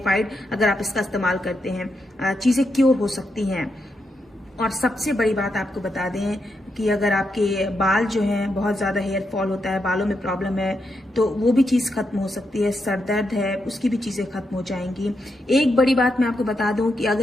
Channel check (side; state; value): both; normal; correlation 0.83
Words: अगर आप इसका इस्तेमाल करते हैं। चीजें क्योर हो सकती हैं। और सबसे बड़ी बात आपको बता दें कि अगर आपके बाल जो हैं बहुत ज्यादा हेयर फॉल होता है, बालों में प्रॉब्लम है, तो वो भी चीज खत्म हो सकती है। सर दर्द है, उसकी भी चीजें खत्म हो जाएंगी। एक बड़ी बात मैं आपको बता दूं कि